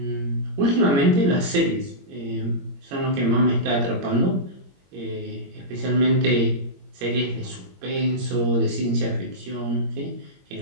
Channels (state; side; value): late; left; 21 ms